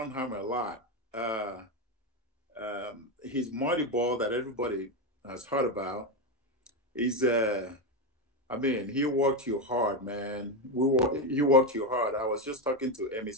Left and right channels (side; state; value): both; normal; correlation 0.11